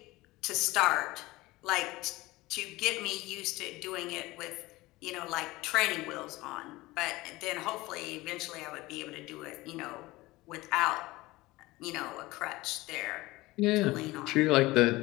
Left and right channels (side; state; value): right; quieter; 19.9 dB